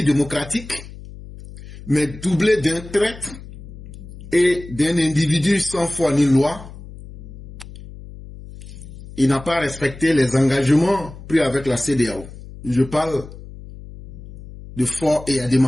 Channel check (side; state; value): left; noise; hum, 15 dB below the sound